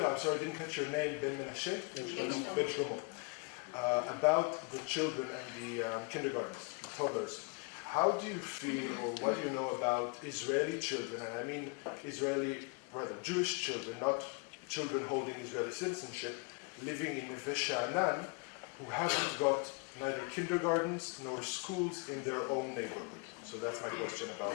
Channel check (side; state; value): right; quieter; 31.9 dB